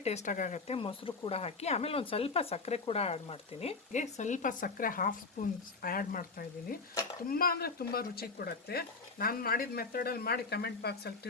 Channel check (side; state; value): right; quieter; 4.2 dB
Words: ಟೇಸ್ಟಾಗುತ್ತೆ. ಮೊಸರು ಕೂಡ ಹಾಕಿ, ಆಮೇಲೆ ಒಂದು ಸ್ವಲ್ಪ ಸಕ್ಕರೆ ಕೂಡ ಆ್ಯಡ್ ಮಾಡ್ತೀನಿ. ಸ್ವಲ್ಪ ಸಕ್ಕರೆ 1/2 ಸ್ಪೂನ್ ಆ್ಯಡ್ ಮಾಡ್ತಾಯಿದ್ದೀನಿ. ತುಂಬ ಅಂದರೆ ತುಂಬ ರುಚಿ ಕೊಡುತ್ತೆ. ನಾನು ಮಾಡಿದ ಮೆಥಡಲ್ಲಿ ಮಾಡಿ ಕಮೆಂಟ್ ಬಾಕ್ಸಲ್ಲಿ